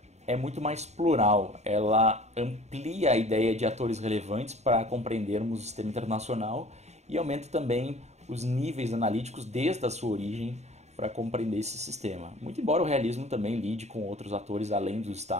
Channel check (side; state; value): left; late; 0.32 ms